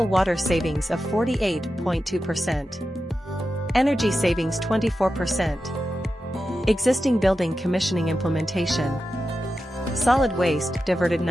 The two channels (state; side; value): normal; both; correlation 0.91